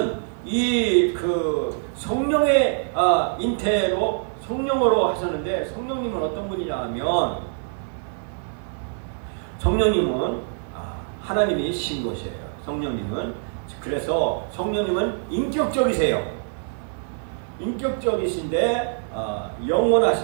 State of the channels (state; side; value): silent; left; digital silence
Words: 성령의 잉태로 성령으로 하셨는데, 성령님은 어떤 분이냐 하면 성령님은 하나님이 신 것이에요. 그래서 성령님은 인격적이세요. 인격적이신데